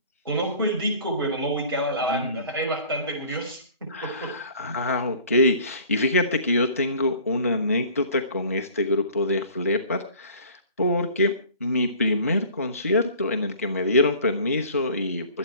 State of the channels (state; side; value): inverted; both; correlation -0.48